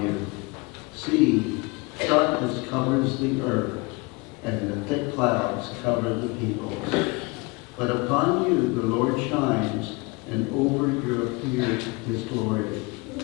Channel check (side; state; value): right; quieter; 26.4 dB